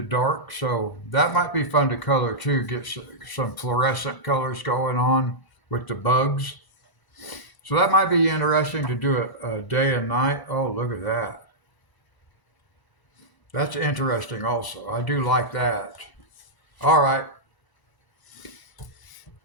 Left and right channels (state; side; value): late; right; 1.0 ms